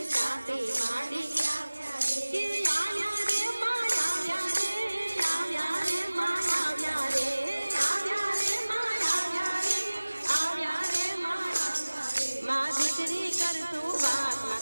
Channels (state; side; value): inverted; both; correlation -1.00